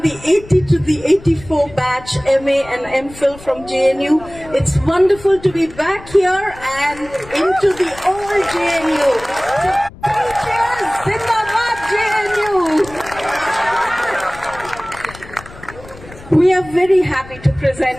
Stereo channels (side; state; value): left; noise; rumble, 19 dB below the sound